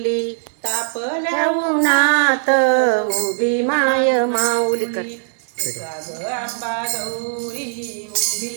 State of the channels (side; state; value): left; silent; digital silence